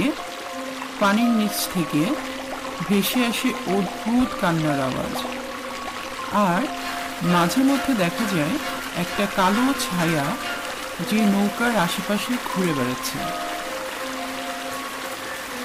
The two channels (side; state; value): both; identical; correlation 1.00